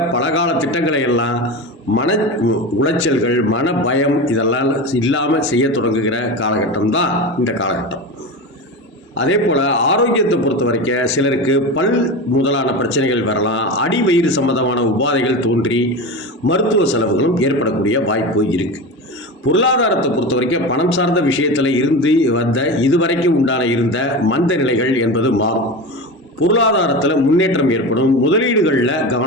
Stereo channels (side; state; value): both; normal; correlation 0.25